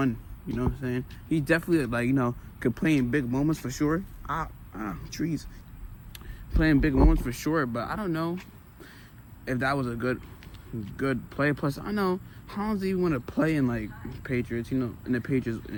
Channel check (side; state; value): both; identical; correlation 1.00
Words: You know what I'm saying? He definitely, like, you know, could play in big moments for sure. Trees. Playing big moments for sure, but I don't know if that was a good play. Plus, I know Hollins even want to play in like Patriots, you know, in the